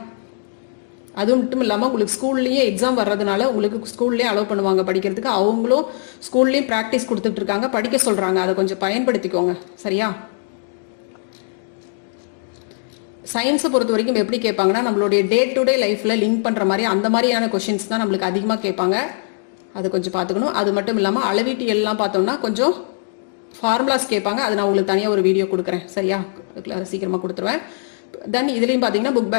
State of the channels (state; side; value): silent; right; digital silence